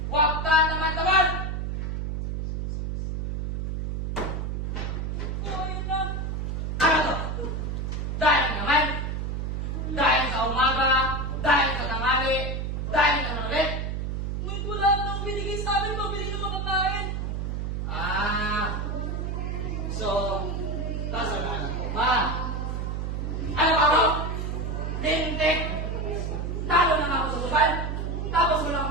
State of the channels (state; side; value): noise; right; hum, 2 dB below the sound